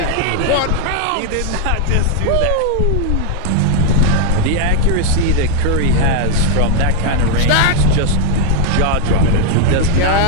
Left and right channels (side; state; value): both; different; correlation 0.00